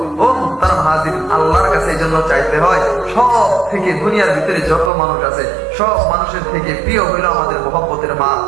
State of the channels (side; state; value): left; drops out; at 4.9 s